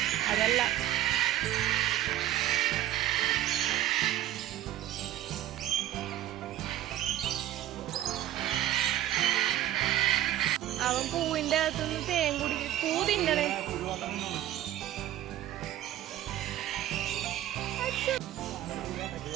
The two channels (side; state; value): left; quieter; 13.1 dB